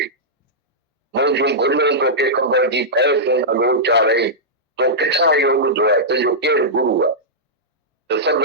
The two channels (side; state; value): both; normal; correlation -0.12